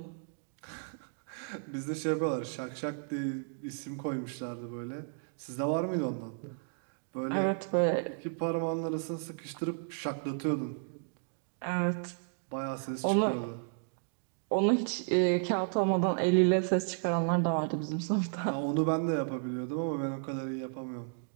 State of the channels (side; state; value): left; silent; digital silence